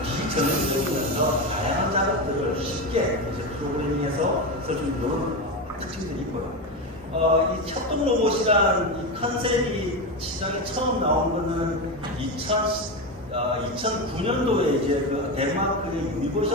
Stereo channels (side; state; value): both; normal; correlation 0.16